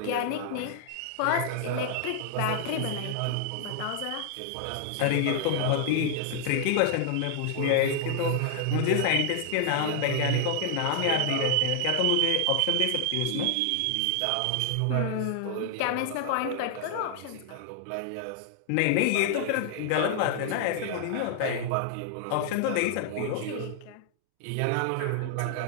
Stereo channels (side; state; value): both; different; correlation 0.00